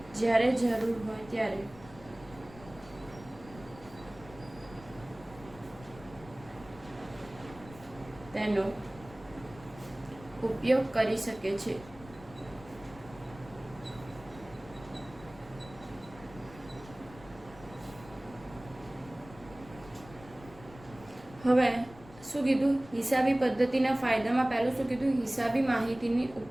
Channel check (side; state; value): left; noise; rumble, 19 dB below the sound